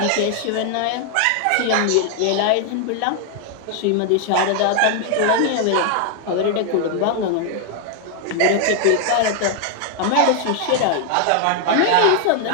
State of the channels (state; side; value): different; both; correlation 0.00